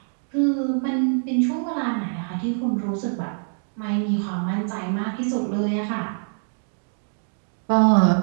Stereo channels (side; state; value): left; silent; digital silence